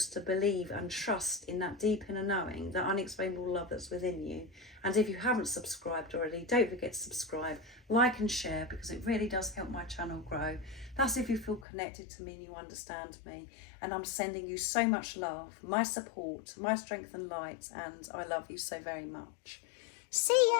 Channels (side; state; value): right; drops out; at 11.7 s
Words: to believe and trust in that deep inner knowing, that unexplainable love that's within you. And if you haven't subscribed already, don't forget to subscribe, like and share, because it really does help my channel grow. That's if you feel connected to me and you understand me. And I'm sending you so much love, my support, my strength and light, and I love you so very much. See